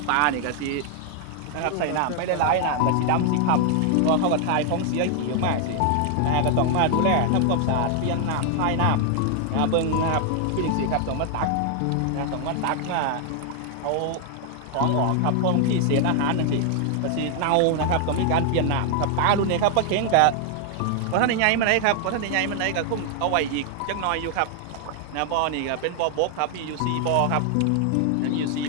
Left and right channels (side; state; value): both; different; correlation 0.00